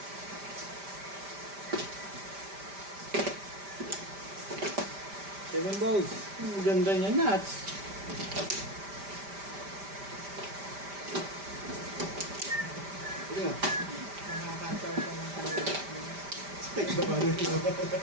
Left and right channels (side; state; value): left; late; 5.1 ms